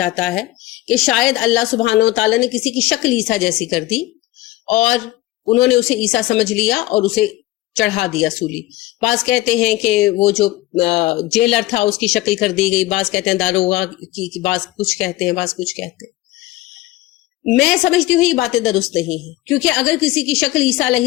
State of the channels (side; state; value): right; quieter; 17.3 dB